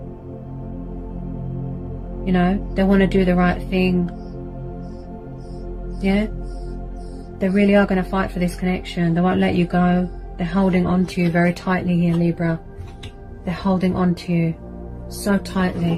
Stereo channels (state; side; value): identical; both; correlation 1.00